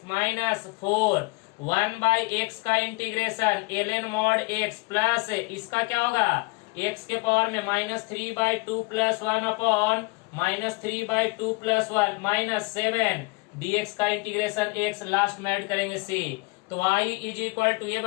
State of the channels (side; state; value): right; quieter; 27.3 dB